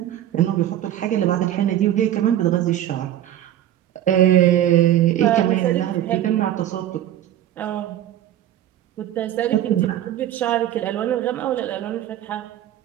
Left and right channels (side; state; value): left; quieter; 12.1 dB